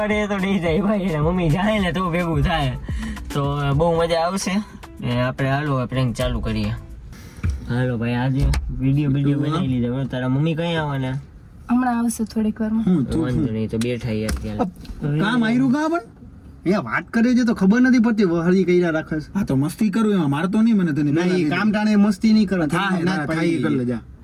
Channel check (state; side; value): identical; both; correlation 1.00